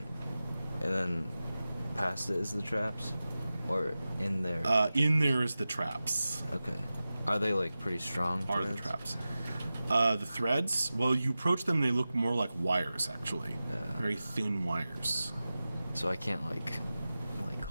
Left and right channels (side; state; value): both; inverted; correlation -0.95